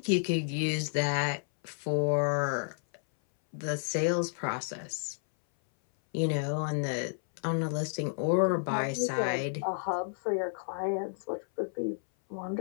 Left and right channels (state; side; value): silent; right; 57 dB below the other